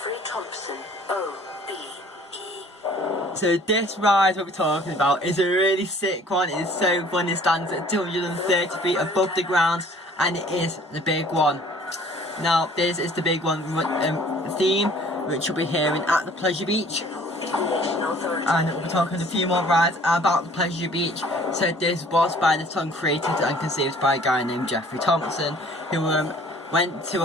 So this ride we'll be talking about is a really sick one. It is so fun. It stands at 230 feet above the ground and it is the big one. Now this is the big one theme which you'll be hearing at the Pleasure Beach. And we'll be talking a few more rides about the Pleasure Beach. So this was by the song created and conceived by a guy named Jeffrey Thompson, who went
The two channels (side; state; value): both; normal; correlation 0.53